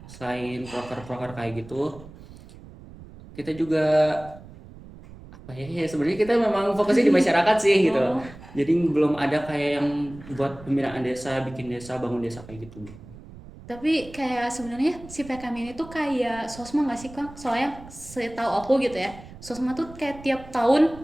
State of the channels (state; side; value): noise; right; rumble, 18 dB below the sound